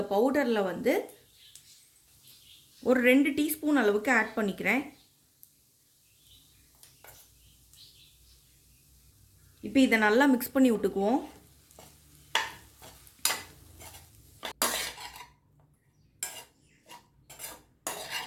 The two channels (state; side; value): identical; both; correlation 1.00